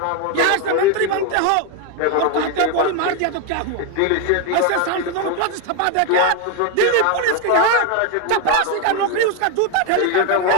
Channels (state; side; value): different; both; correlation 0.01